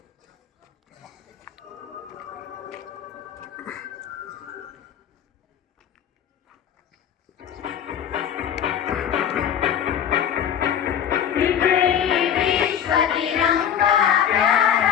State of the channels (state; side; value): quieter; right; 9.1 dB